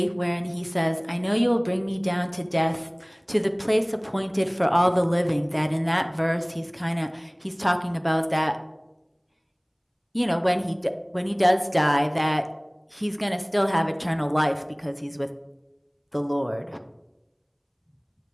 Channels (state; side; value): identical; both; correlation 1.00